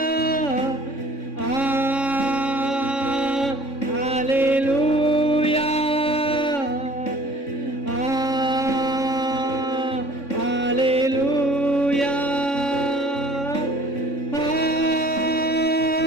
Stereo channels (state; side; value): late; right; 3.6 ms